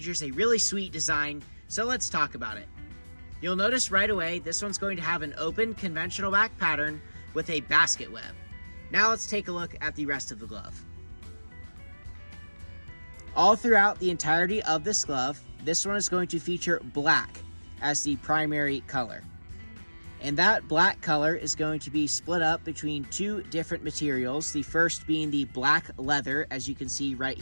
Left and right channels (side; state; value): both; inverted; correlation -1.00